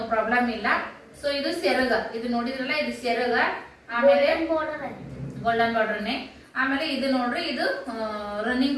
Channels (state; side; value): identical; both; correlation 1.00